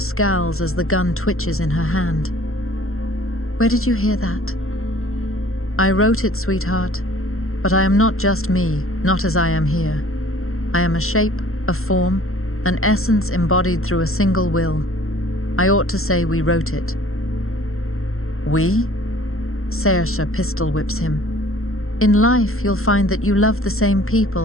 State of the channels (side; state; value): right; late; 0.62 ms